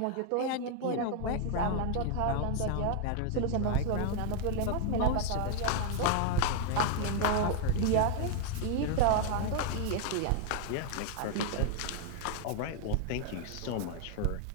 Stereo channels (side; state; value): both; different; correlation 0.00